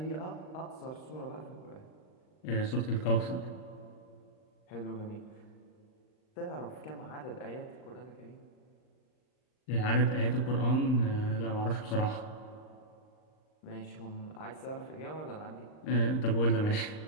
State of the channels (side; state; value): right; late; 39 ms